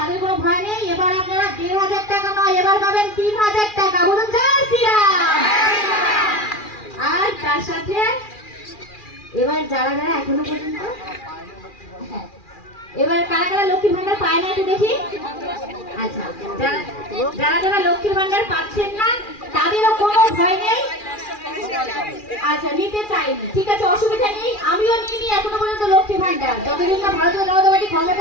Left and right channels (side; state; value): right; late; 2.4 ms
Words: কোনো ভয় নেই। এবার আপনারা 1500 টাকা নয়, এবার পাবেন 3000 টাকা। বলুন জয় শ্রীরাম। আর তার সাথে এবার যারা যারা এখনো পর্যন্ত, হ্যাঁ, এবার কারা কারা লক্ষ্মীর ভান্ডার পায় না একটু দেখি। আচ্ছা, যারা যারা লক্ষ্মীর ভান্ডার পাচ্ছেন না তাদেরও কোনো ভয় নেই। আচ্ছা, নিতে চাইনি, ঠিক আছে, অসুবিধা নেই, আমিও নিইনি এখনো পর্যন্ত লক্ষ্মীর ভান্ডার। যতদিন না ভারতীয় জনতা পার্টি